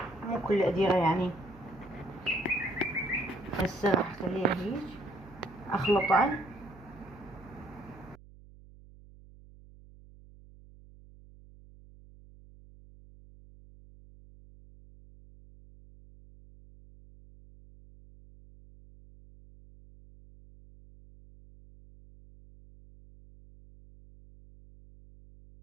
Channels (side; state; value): right; noise; hum, 21 dB below the sound